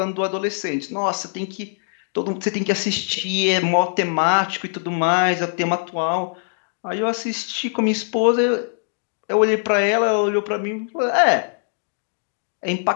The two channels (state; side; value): silent; right; digital silence